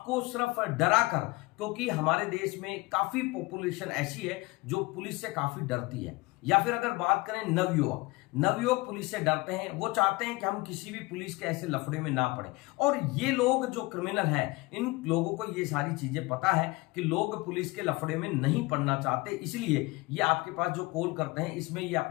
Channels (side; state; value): right; quieter; 22.9 dB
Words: सिर्फ डरा कर, क्योंकि हमारे देश में काफी पॉपुलेशन ऐसी है जो पुलिस से काफी डरती है। या फिर अगर बात करें नवयुवक पुलिस से डरते हैं, वो चाहते हैं कि हम किसी भी पुलिस के ऐसे लफड़े में ना पड़े। और ये लोग जो क्रिमिनल हैं इन लोगों को ये सारी चीजें पता है कि लोग पुलिस के लफड़े में नहीं पड़ना चाहते, इसलिए ये आपके पास जो कॉल करते हैं इसमें ये